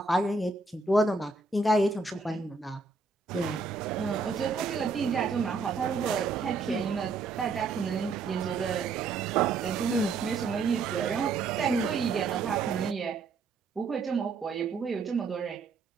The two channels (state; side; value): quieter; left; 4.2 dB